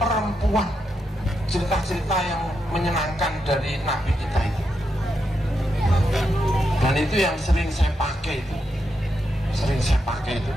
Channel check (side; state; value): both; normal; correlation 0.84